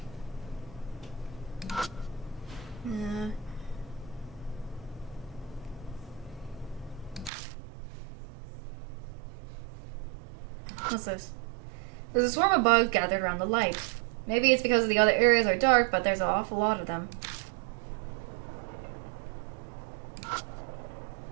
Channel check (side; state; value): left; drops out; at 7.3 s